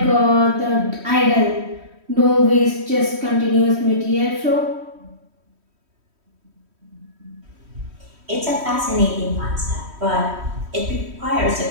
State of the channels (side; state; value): left; late; 3.1 ms